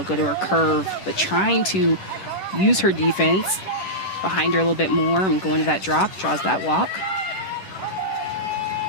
go to her curve, but trying to use her defense behind her a little bit more and going to that drop, draws that walk.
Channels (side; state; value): right; late; 10 ms